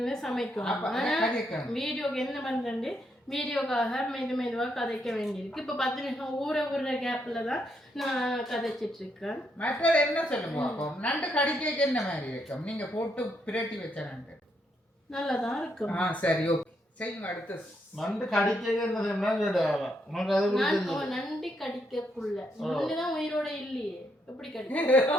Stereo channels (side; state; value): both; normal; correlation 0.77